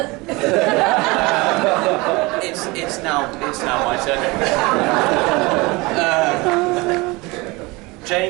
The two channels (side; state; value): left; quieter; 24.0 dB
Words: It's now my turn.